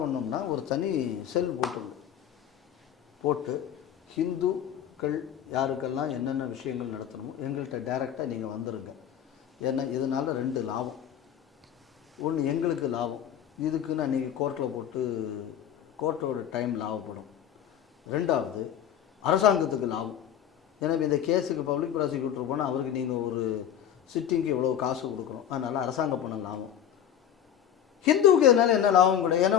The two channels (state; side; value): quieter; right; 9.8 dB